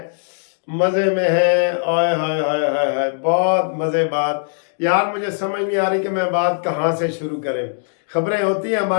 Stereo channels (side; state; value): right; silent; digital silence